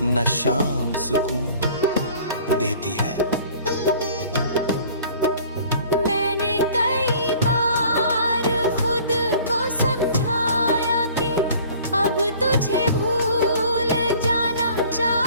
न शाम सुकून देती है। मैंने कई बार खुद को समझाया कि अब तुझे भूल जाना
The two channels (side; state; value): both; inverted; correlation -0.50